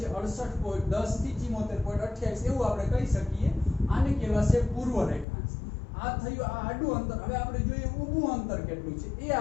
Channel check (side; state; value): right; drops out; at 5.2 s